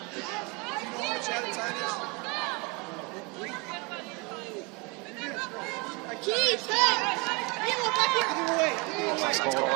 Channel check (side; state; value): left; quieter; 29.0 dB